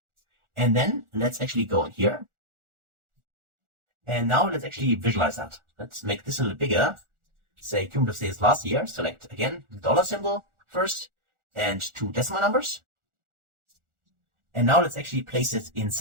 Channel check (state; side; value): late; left; 1.4 ms